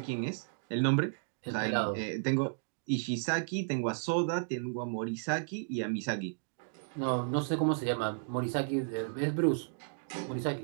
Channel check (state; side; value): silent; left; digital silence